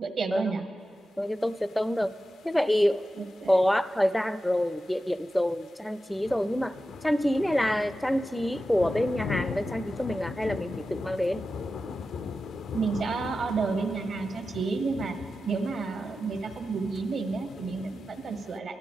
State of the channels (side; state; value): both; normal; correlation 0.92